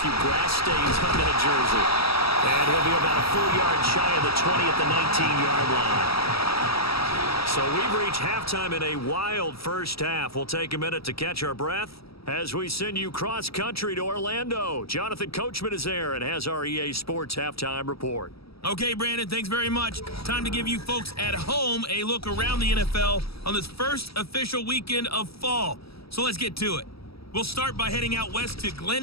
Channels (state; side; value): late; right; 0.76 ms